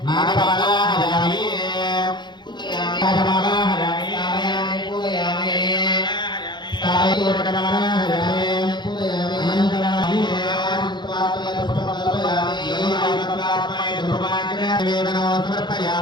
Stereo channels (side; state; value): right; late; 0.21 ms